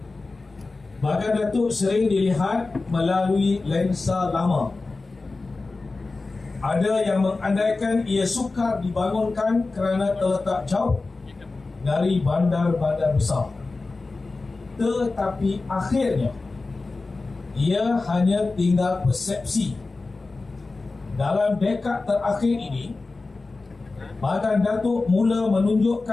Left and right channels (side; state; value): right; quieter; 3.6 dB